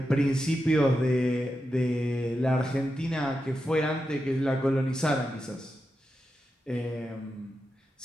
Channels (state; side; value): normal; both; correlation 0.88